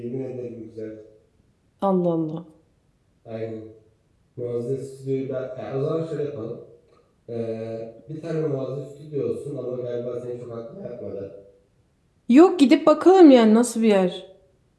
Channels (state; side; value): identical; both; correlation 1.00